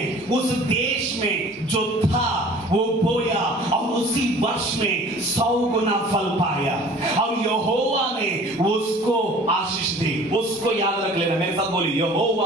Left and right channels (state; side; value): normal; both; correlation 0.47